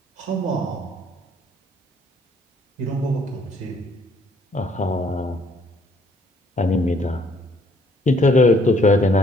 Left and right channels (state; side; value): normal; both; correlation 0.64